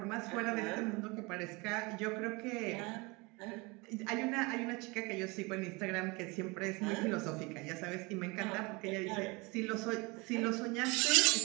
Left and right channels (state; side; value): quieter; left; 26.4 dB